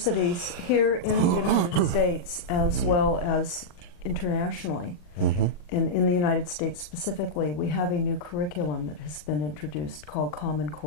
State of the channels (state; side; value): late; right; 40 ms